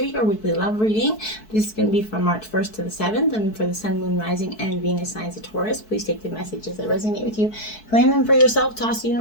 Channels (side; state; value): right; late; 4.6 ms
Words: your weekly love reading. This is going to be from March 1st to the 7th, and for the Sun, Moon, Rising, and Venus signs of Taurus. Please take the messages that resonate with you, claim them for yourself, toss the